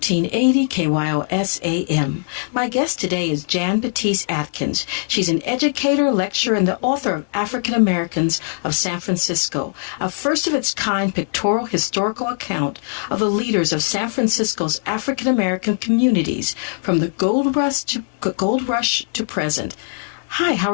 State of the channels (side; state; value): right; silent; digital silence